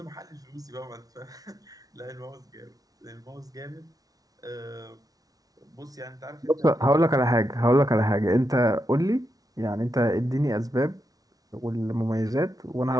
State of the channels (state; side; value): late; left; 0.18 ms